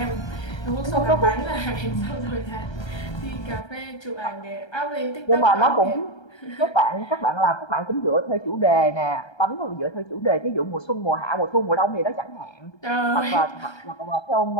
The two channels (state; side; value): late; right; 1.3 ms